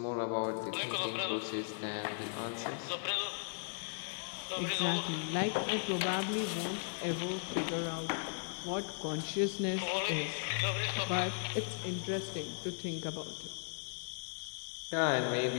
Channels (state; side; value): silent; right; digital silence